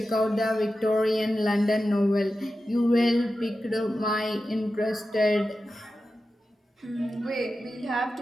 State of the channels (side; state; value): both; normal; correlation 0.92